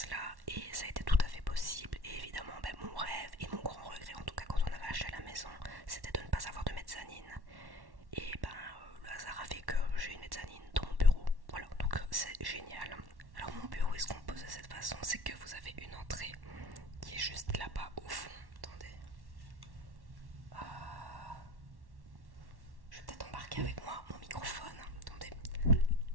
là, et ça a été tout à fait possible. Et évidemment mon rêve et mon grand regret en tout cas quand on avait acheté la maison, c'était de ne pas avoir de mezzanine. Et le hasard a fait que j'ai une mezzanine dans mon bureau. Voilà, donc c'est génial. Alors mon bureau est se compose de cette façon, c'est que vous avez une entrée qui est juste là-bas au fond. Attendez. Je vais peut-être embarquer avec moi mon microphone. Attendez.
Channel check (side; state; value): left; late; 1.1 ms